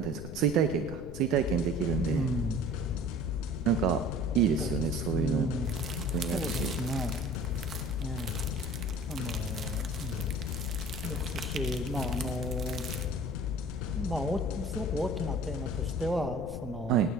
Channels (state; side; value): noise; left; rumble, 9 dB below the sound